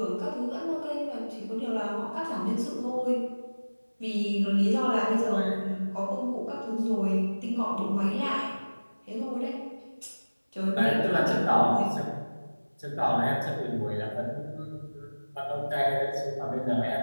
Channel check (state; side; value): inverted; both; correlation -1.00